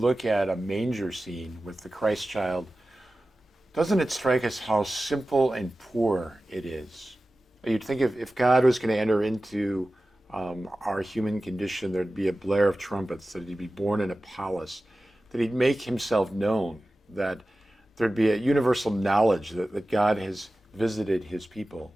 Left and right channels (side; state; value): both; normal; correlation 0.95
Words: at a manger scene with the Christ child, doesn't it strike us how simple and poor it is? You'd think if God was going to enter into our human condition, there'd be a blare of trumpets, that he'd be born in a palace, that he'd make himself known, that there'd be a universal knowledge that God has visited his people.